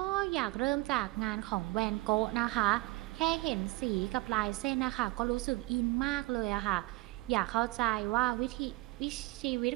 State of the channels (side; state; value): left; quieter; 21.5 dB